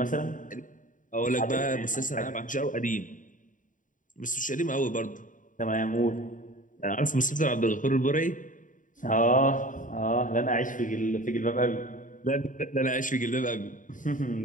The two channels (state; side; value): late; right; 0.38 ms